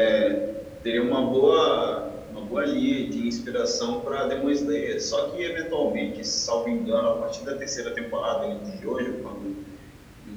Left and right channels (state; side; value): identical; both; correlation 1.00